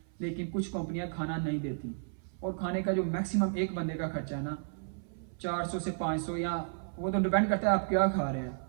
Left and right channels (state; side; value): silent; left; 56 dB below the other